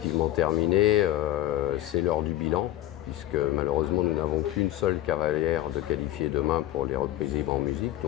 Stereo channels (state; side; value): quieter; right; 14.3 dB